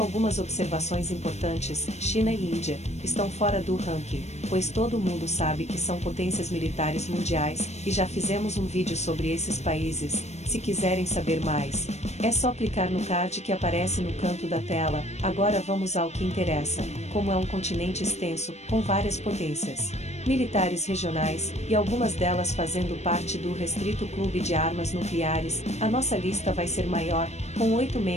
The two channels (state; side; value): late; right; 0.32 ms